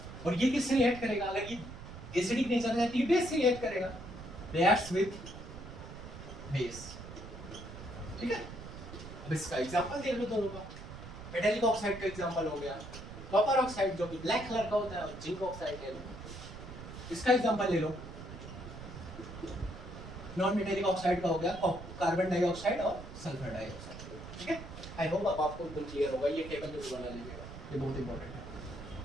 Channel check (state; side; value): noise; right; rumble, 12 dB below the sound